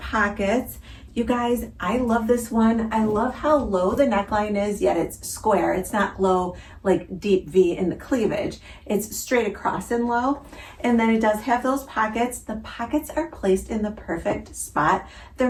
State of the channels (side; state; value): both; identical; correlation 1.00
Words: You guys, I love this one. I love how low the neckline is, yet it's square. It's not low like deep V in the cleavage. It's straight across and low. And then it does have those pockets. The pockets are placed in the perfect spot.